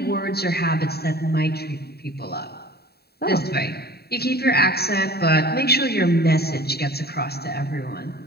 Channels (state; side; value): late; right; 0.46 ms